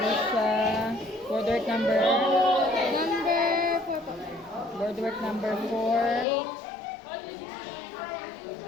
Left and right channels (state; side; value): drops out; right; at 6.2 s